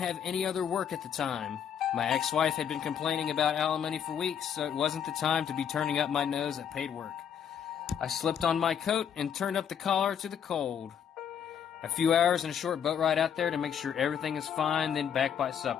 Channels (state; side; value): quieter; right; 8.4 dB